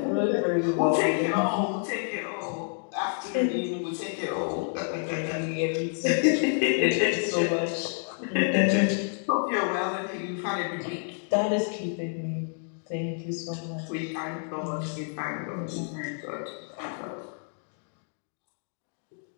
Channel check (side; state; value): right; silent; 59 dB below the other